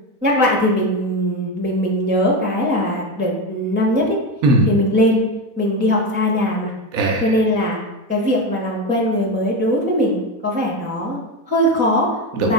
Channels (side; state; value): left; late; 4.1 ms